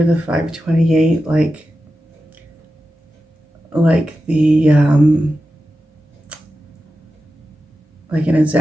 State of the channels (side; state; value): both; normal; correlation 0.92